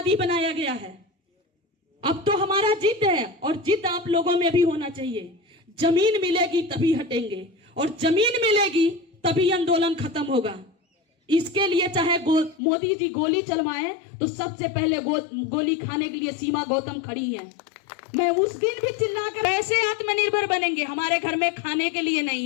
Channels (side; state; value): right; drops out; at 12.6 s